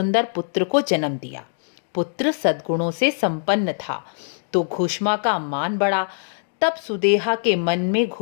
पुत्र को जन्म दिया। पुत्र सद्गुणों से संपन्न था तो घुश्मा का मान बढ़ा। तब सुदेहा के मन में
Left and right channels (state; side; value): silent; right; 64 dB below the other